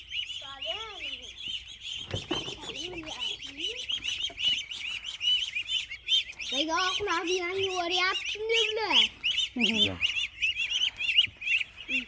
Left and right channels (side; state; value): both; identical; correlation 1.00